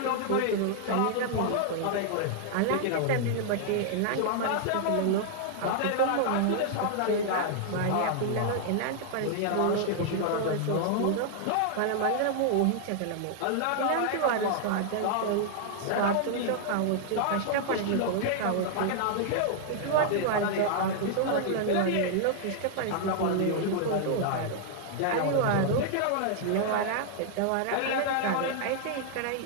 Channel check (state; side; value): different; both; correlation -0.01